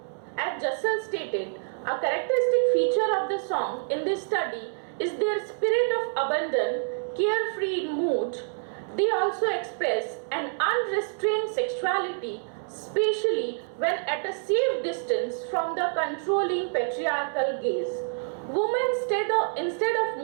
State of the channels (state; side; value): silent; left; digital silence